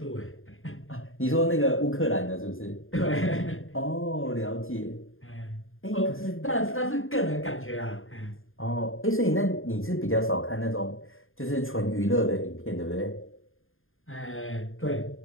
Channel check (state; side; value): late; right; 0.60 ms